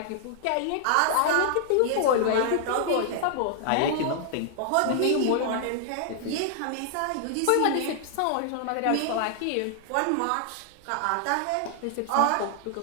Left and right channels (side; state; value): both; different; correlation 0.00